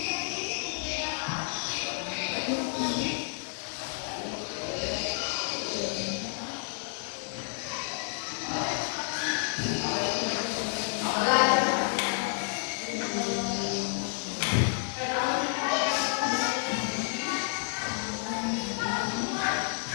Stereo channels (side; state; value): right; silent; 58 dB below the other